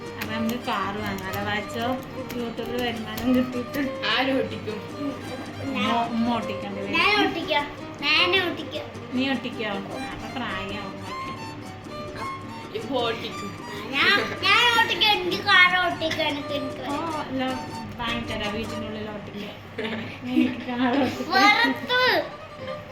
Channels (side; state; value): both; identical; correlation 1.00